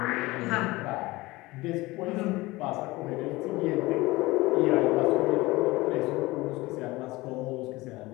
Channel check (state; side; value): quieter; right; 20.7 dB